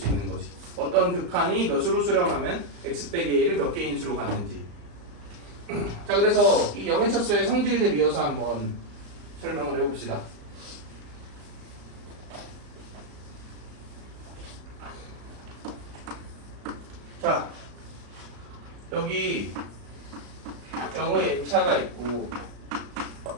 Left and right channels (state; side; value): late; left; 35 ms